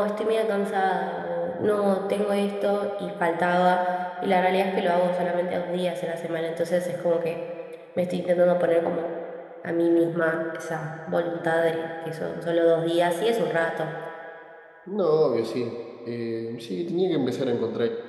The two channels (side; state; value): both; identical; correlation 1.00